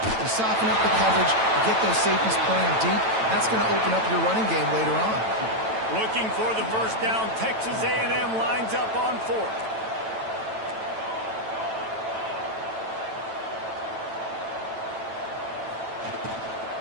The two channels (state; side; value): late; left; 9.0 ms